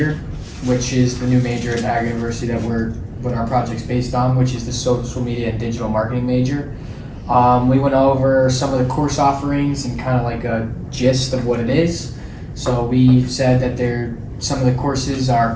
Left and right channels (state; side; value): identical; both; correlation 1.00